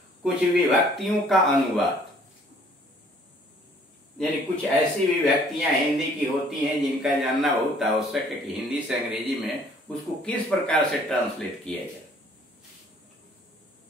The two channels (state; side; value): normal; both; correlation 0.58